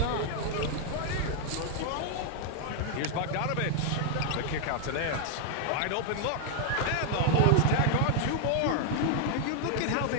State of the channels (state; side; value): different; both; correlation 0.00